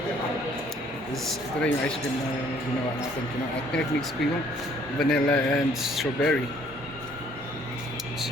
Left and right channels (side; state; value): both; normal; correlation 0.61